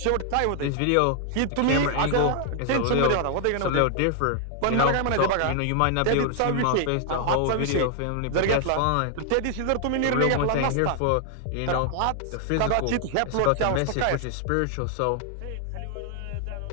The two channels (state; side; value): different; both; correlation 0.00